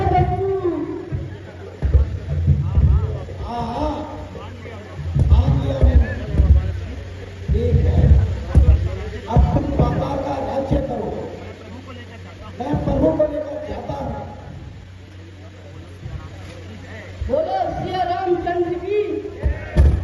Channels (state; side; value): identical; both; correlation 1.00